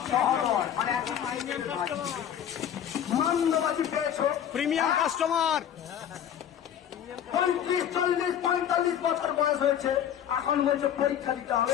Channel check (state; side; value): quieter; right; 9.7 dB